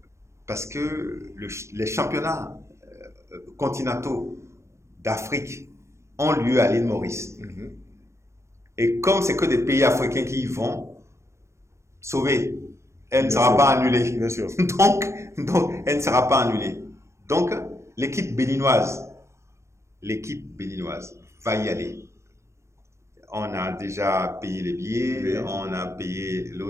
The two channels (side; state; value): left; late; 0.14 ms